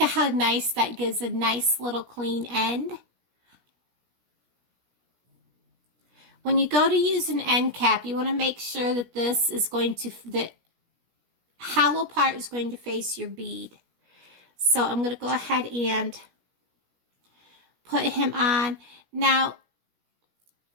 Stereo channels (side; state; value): left; late; 17 ms